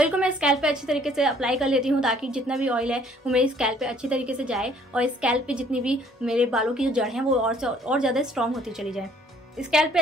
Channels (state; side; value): normal; both; correlation 0.59